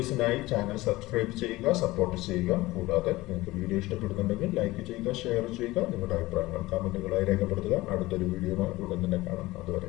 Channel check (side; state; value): right; quieter; 19.2 dB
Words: ചാനൽ സബ്സ്ക്രൈബ് ചെയ്യുക, സപ്പോർട്ട് ചെയ്യുക. കൂടാതെ നിങ്ങൾക്ക് വീഡിയോ ഇഷ്ടപ്പെടുന്നുണ്ടെങ്കിൽ ലൈക്ക് ചെയ്യുക, ഷെയർ ചെയ്യുക. നിങ്ങളുടെ അഭിപ്രായങ്ങൾ കമന്റുകളായി രേഖപ്പെടുത്തുക. അടുത്തൊരു വീഡിയോയുമായി ഉടൻ തന്നെ കാണാം.